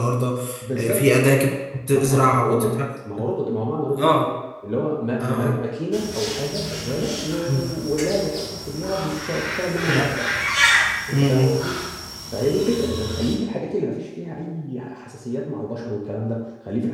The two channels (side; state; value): both; identical; correlation 1.00